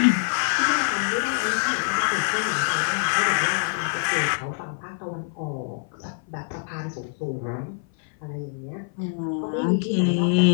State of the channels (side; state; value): right; silent; 56 dB below the other